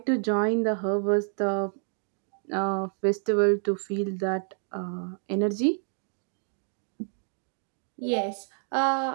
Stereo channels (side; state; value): left; silent; digital silence